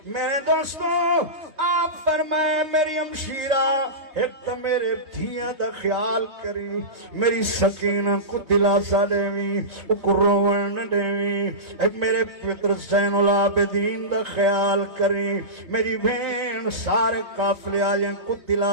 میرے دوستوں آپ فرمائے میری ہمشیرہ ایک تو میرے دھیاں دا خیال کری، میری سکینہ کو دلاسا دیویں، اکو روون نہ دیویں، ایک میرے پتر زین العابدین دا خیال کری، میری بہن سارے قافلے آجیں کو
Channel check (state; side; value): late; left; 3.4 ms